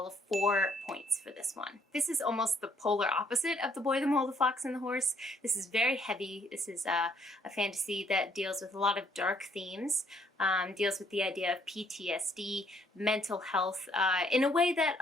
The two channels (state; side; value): normal; both; correlation 0.66